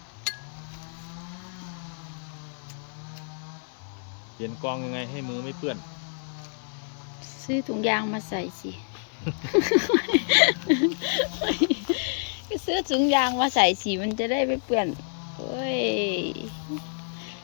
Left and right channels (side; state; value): right; silent; 59 dB below the other